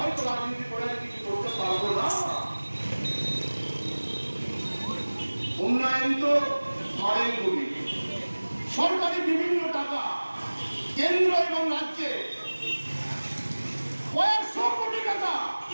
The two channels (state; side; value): inverted; both; correlation -1.00